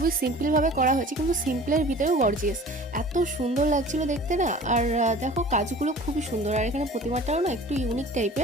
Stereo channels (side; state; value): both; normal; correlation 0.44